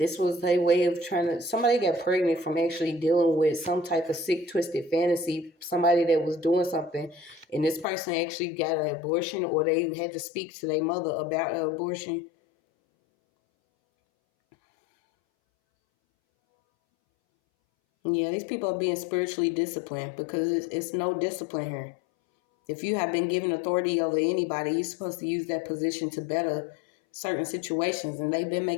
was a way of somebody got pregnant from actually dealing with some type of sick, twisted fantasy, somebody that was doing something, and this person actually got an abortion, or they had to speak to their mother about an abortion. Yeah, these people are being spiritually disciplined because it's no discipline here. If you have been given authority over anybody, you're supposed to use that position to better certain situations, and they've been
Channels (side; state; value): right; drops out; at 7.9 s